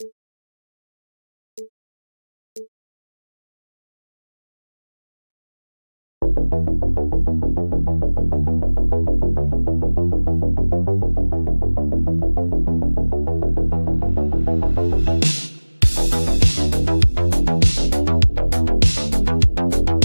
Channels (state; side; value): inverted; both; correlation -1.00